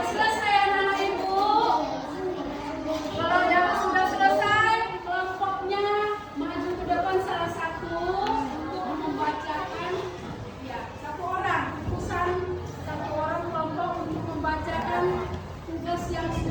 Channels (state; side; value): identical; both; correlation 1.00